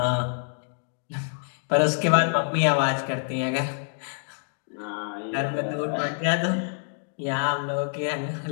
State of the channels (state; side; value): silent; right; 60 dB below the other